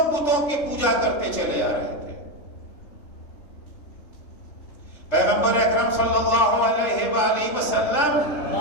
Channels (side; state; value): right; late; 3.3 ms